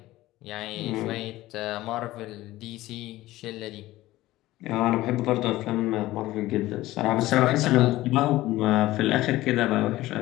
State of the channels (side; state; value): right; quieter; 16.8 dB